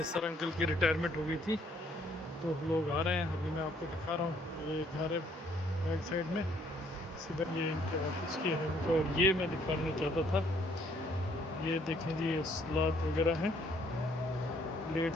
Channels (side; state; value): both; normal; correlation 0.65